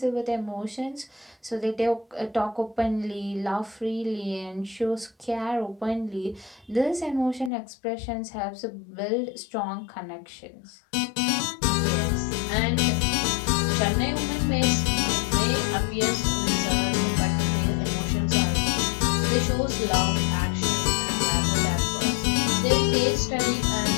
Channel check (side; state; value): right; drops out; at 7.5 s